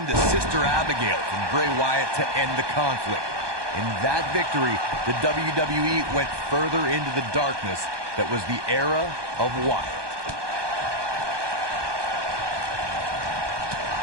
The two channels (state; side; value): late; left; 1.2 ms